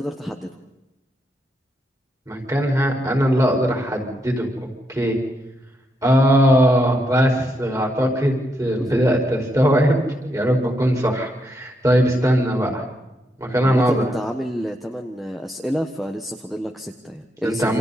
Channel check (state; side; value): normal; both; correlation 0.79